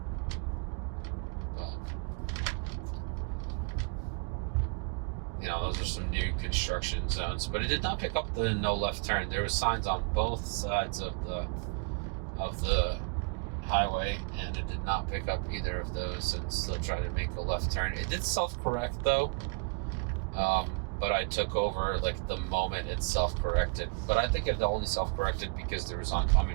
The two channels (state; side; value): quieter; left; 35.0 dB